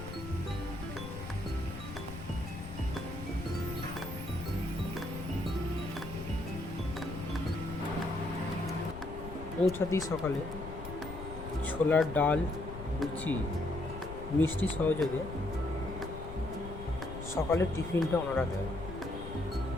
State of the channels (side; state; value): left; noise; rumble, 10 dB below the sound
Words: পৌঁছাতেই সকালে ছোলার ডাল, লুচি, মিষ্টি সহযোগে সকালের টিফিনটা ওনারা দেয়।